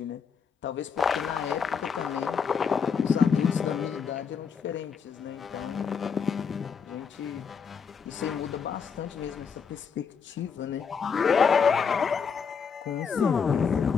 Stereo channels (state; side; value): quieter; right; 6.3 dB